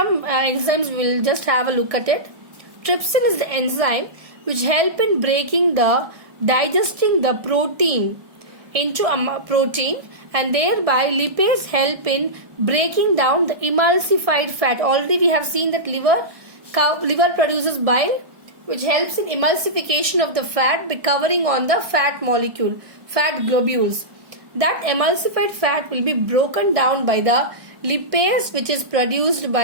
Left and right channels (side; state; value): left; late; 1.6 ms